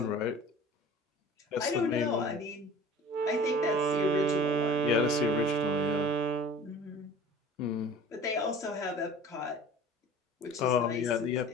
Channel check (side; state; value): both; normal; correlation 0.43